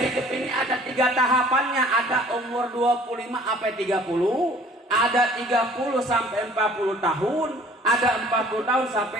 hidup ini ada 3 tahapannya. Ada umur 25 sampai 30, ada 30 sampai 40 tahun, ada 40 tahun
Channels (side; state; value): both; normal; correlation 0.52